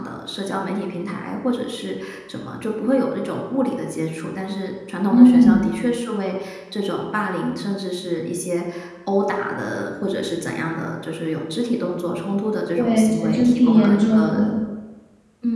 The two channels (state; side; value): identical; both; correlation 1.00